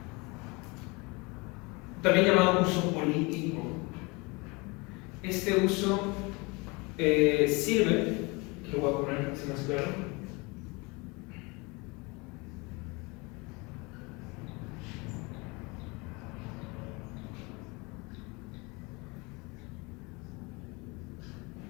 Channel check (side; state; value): right; quieter; 27.0 dB